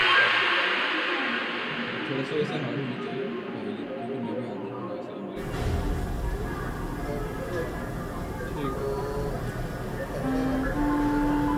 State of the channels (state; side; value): identical; both; correlation 1.00